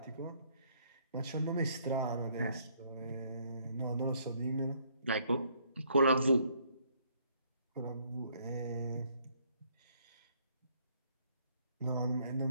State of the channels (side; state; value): both; inverted; correlation -0.66